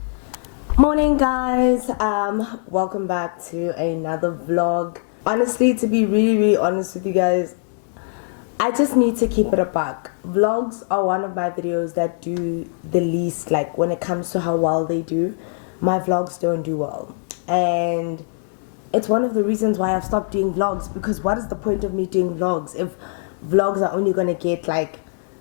Morning guys, welcome back to another vlog. Honestly, to be really honest with you guys, I just need to keep it a buck. Vlogs are one of my videos that do the least, like when it comes to how well they do. My vlogs don't do well, and it's one of the reasons why I've stopped doing vlogs, because what is the point of me doing vlogs if vlogs are only gonna get like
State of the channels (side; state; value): right; silent; digital silence